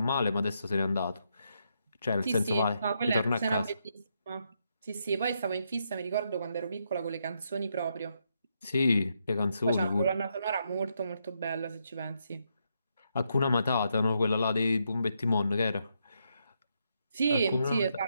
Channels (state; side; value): inverted; both; correlation -0.79